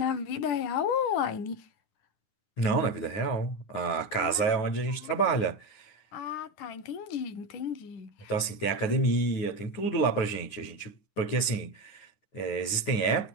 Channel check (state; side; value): late; right; 9.8 ms